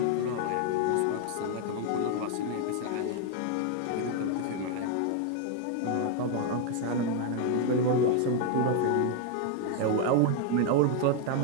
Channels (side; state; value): both; different; correlation 0.00